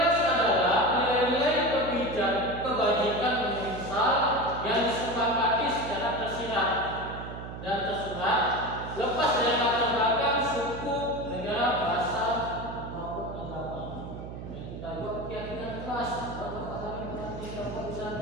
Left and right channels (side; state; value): right; noise; hum, 10 dB below the sound